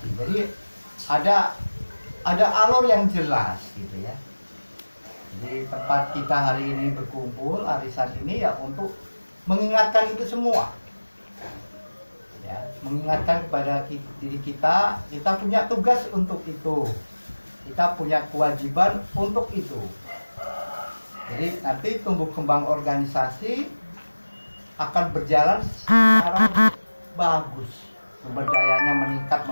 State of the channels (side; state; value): both; inverted; correlation -1.00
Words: Jadi ada alur yang jelas gitu ya. Jadi tempat kita hari ini berkumpul, arisan ini ya untuk mengingatkan itu semua. Ya, mengingatkan kepada diri kita punya tugas untuk itu, kita punya kewajiban untuk itu. Jadi nanti tumbuh kembang organisasi akan berjalan secara bagus, sumber dayanya meningkat